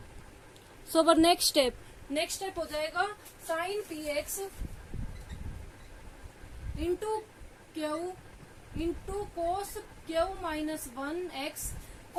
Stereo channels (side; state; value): both; identical; correlation 1.00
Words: So our next step हो जाएगा sine p x into q into cos q minus one x.